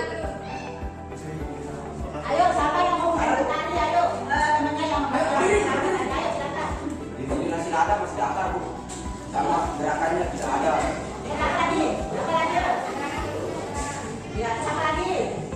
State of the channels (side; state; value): both; identical; correlation 1.00